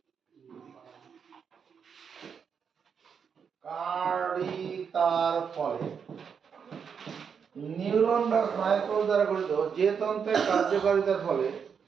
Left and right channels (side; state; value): left; quieter; 6.7 dB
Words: কার্যকারিতার ফলে নিউরন বা স্নায়ুকোষ দ্বারা গঠিত যে তন্ত্রের কার্যকারিতার ফলে